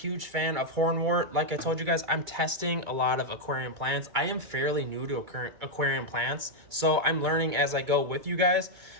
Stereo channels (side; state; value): left; late; 2.2 ms